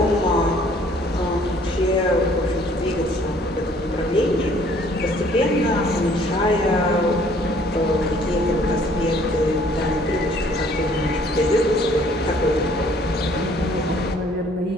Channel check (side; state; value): both; normal; correlation 0.59